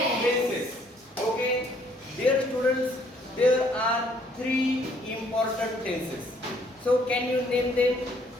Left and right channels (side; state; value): both; normal; correlation 0.64